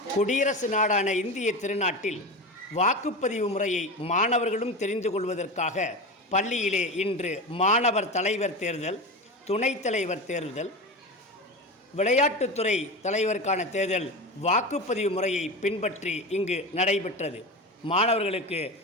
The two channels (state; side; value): normal; both; correlation 0.25